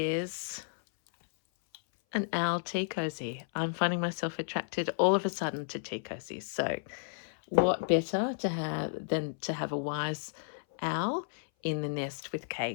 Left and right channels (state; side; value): silent; right; 56 dB below the other